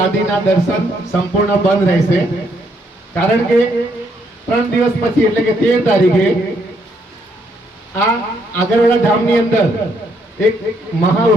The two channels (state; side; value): normal; both; correlation 0.72